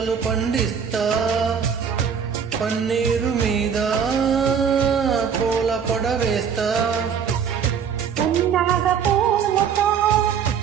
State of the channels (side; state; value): left; quieter; 7.2 dB